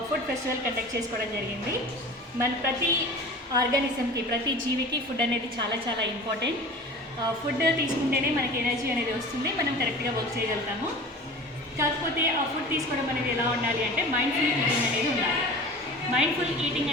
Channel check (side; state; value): both; normal; correlation 0.38